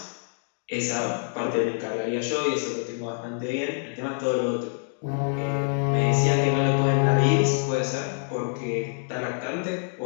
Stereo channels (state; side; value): silent; right; 61 dB below the other